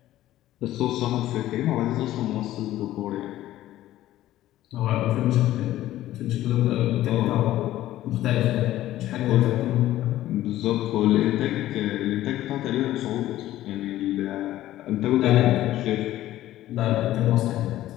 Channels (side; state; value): right; quieter; 14.3 dB